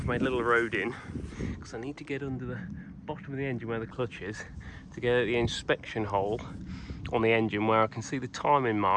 made a little road in because I need to get under the bottom of the engine where the clutch is to get at the inspection hole on the engine where I can see the timing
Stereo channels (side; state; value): both; identical; correlation 1.00